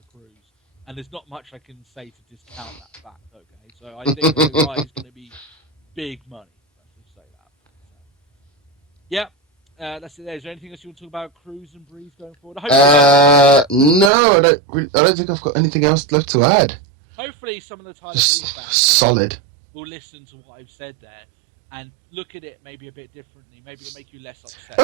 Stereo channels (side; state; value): left; drops out; at 14.1 s